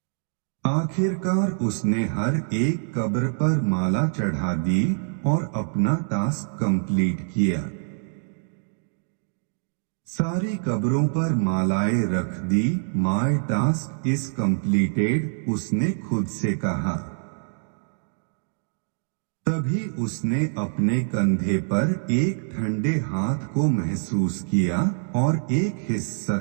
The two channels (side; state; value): left; silent; digital silence